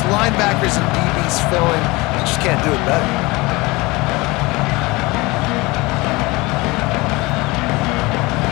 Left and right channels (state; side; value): quieter; right; 23.0 dB